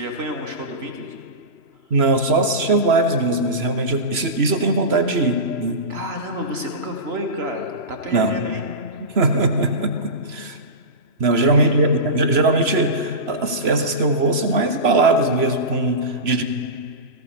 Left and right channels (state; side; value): late; left; 3.0 ms